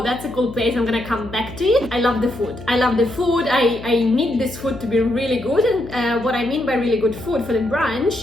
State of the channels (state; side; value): noise; left; hum, 14 dB below the sound